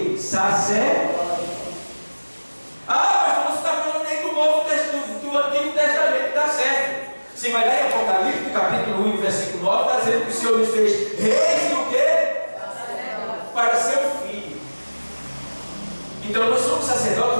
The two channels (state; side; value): inverted; both; correlation -1.00